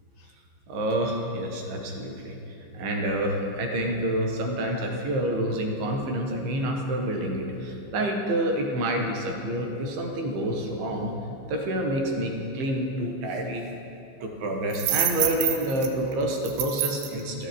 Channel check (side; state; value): left; late; 15 ms